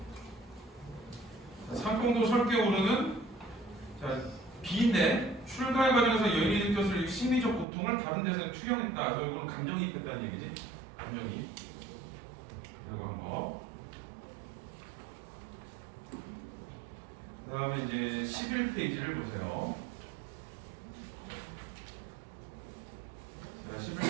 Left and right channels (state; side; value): drops out; left; at 7.7 s